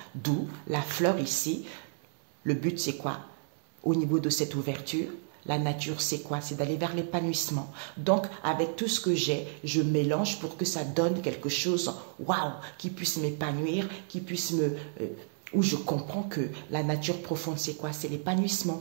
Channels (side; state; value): left; silent; digital silence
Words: D'où la fleur ici. Le but, c'est quoi? au niveau de cette ouverture. La nature, c'est quoi? C'est d'aller vers l'épanouissement. Donc, avec tout ce que j'ai, je mélange pour que ça donne quelque chose, waouh, qui puisse m'épanouir, qui puisse où je comprends que la nature profonde, c'est quoi? C'est l'épanouissement,